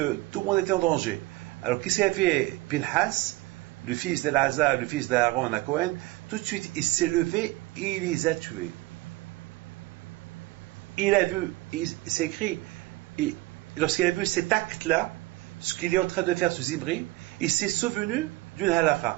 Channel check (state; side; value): quieter; left; 19.9 dB